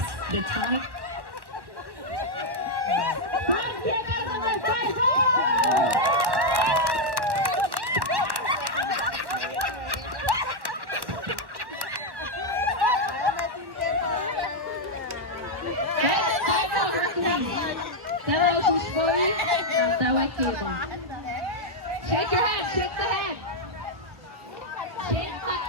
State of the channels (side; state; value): left; late; 1.1 ms